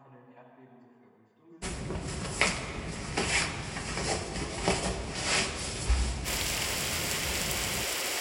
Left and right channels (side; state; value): both; identical; correlation 1.00